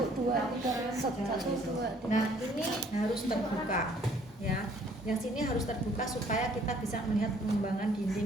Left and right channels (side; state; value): both; normal; correlation 0.60